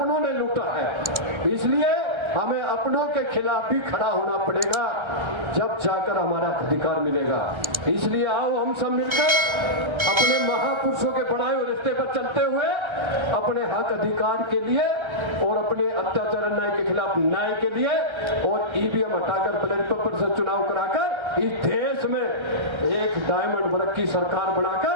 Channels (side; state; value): left; late; 1.3 ms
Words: ने लूटा है। इसलिए हमें अपनों के खिलाफ भी खड़ा होना पड़ेगा, जब जाकर हमारा अधिकार मिलेगा। इसलिए आओ हम सब मिलकर अपने महापुरुषों के बढ़ाए हुए रास्ते पर चलते हुए अपने हक अधिकार के लिए और अपने अत्याचार अन्याय के खिलाफ न्याय के लिए और ईवीएम हटाकर बैलेट पेपर से चुनाव कराकर इस देश में एक डायमंड वर्ग की सरकार